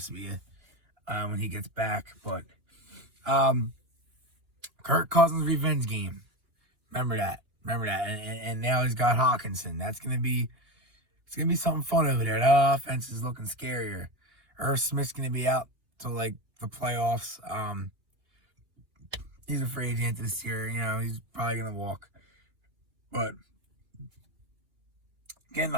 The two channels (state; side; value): late; left; 2.8 ms